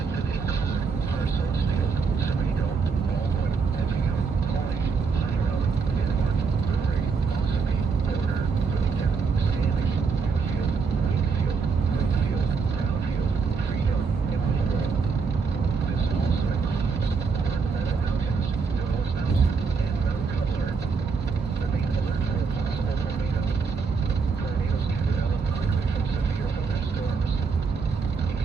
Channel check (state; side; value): quieter; left; 5.1 dB